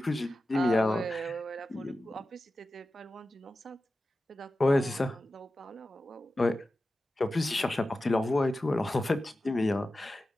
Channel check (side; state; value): both; normal; correlation 0.93